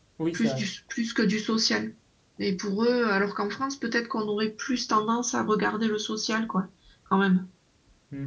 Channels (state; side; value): identical; both; correlation 1.00